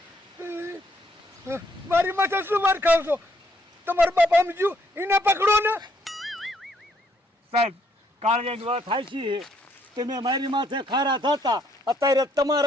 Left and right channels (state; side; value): normal; both; correlation 0.70